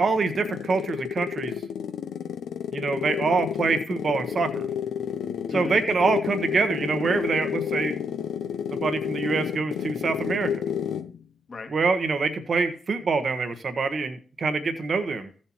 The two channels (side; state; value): both; normal; correlation 0.78